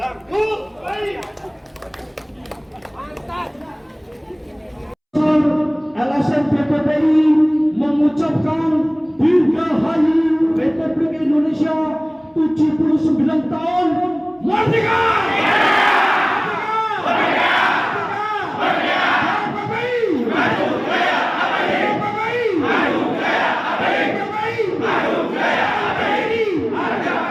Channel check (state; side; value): identical; both; correlation 1.00